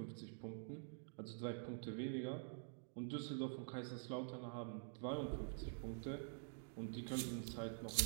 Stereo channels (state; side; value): silent; left; digital silence